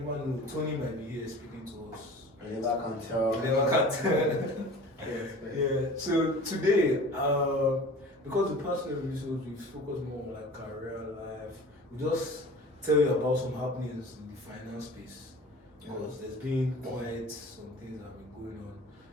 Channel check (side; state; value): both; normal; correlation 0.41